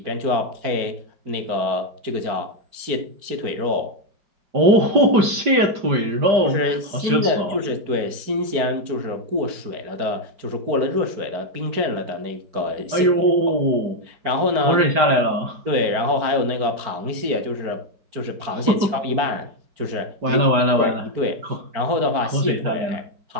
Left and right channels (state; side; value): late; left; 5.0 ms